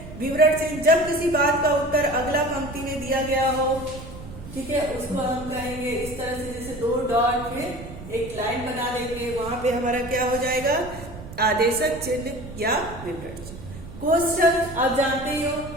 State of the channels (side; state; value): right; noise; rumble, 13 dB below the sound